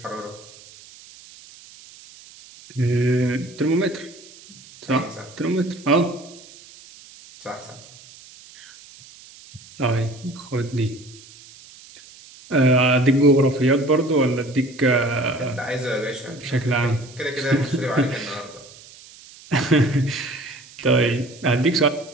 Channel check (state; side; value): noise; right; hiss, 21 dB below the sound